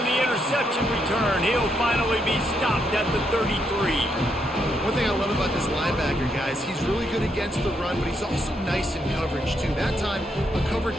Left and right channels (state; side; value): normal; both; correlation 0.78